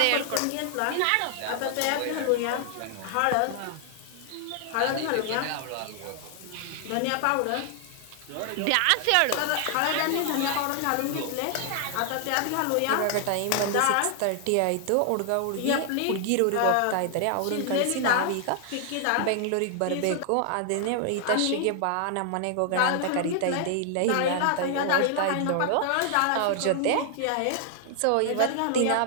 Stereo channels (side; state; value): both; different; correlation 0.00